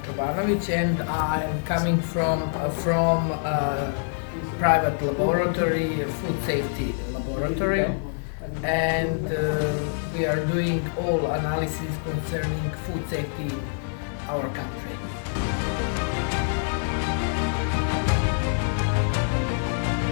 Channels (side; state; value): right; silent; digital silence